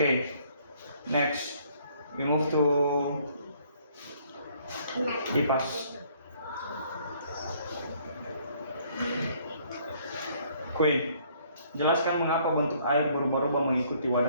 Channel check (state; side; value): inverted; both; correlation -0.63